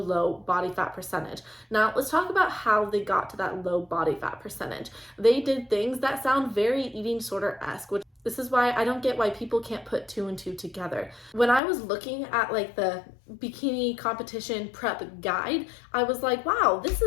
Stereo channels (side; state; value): right; drops out; at 11.6 s